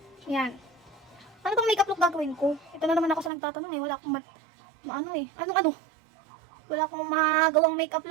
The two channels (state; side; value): drops out; left; at 3.3 s